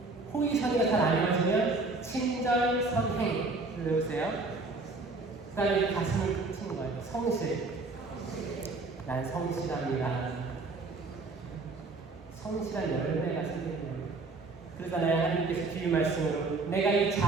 호의, 선의가 잘 안 이루어지면 친절, 선행. 외우세요. 그 다음에 가슴을 펼치는 거예요. 성실. 난 성실합니다. 성실한 열매가 생기는 거예요. 그러잖아요. 하나님께서 주신 말씀으로 내가 이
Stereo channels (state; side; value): quieter; left; 3.6 dB